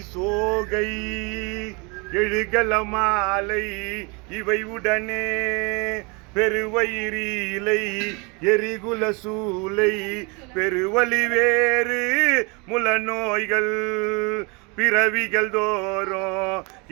சோகை எழுகல மாலை இவை உடனே பெருவயிரிலை எரிகுல சூலை பெருவலி வேறு முல நோய்கள் பிறவிகள் தோறும்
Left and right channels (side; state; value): left; quieter; 29.9 dB